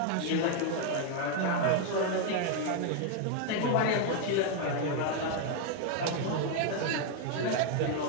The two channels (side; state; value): both; different; correlation 0.01